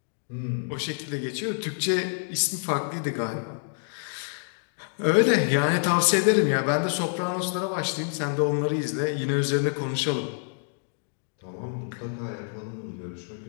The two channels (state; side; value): silent; right; digital silence